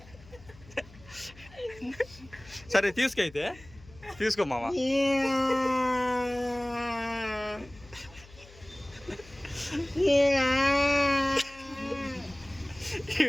సరే తీసుకో, అయితే తీసుకో మామ.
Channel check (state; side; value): noise; left; hum, 22 dB below the sound